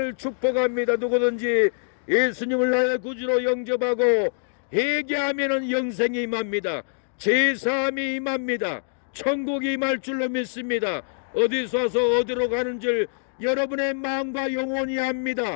축복합니다. 누구든지 예수님을 나의 구주로 영접하고 회개하면 영생이 임합니다. 제3이 임합니다. 천국이 임할 줄로 믿습니다. 어디서 와서 어디로 가는 줄 여러분의 마음과 영혼이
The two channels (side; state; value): right; silent; digital silence